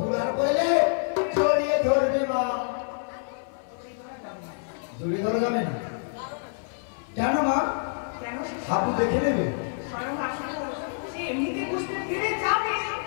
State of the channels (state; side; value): silent; right; 55 dB below the other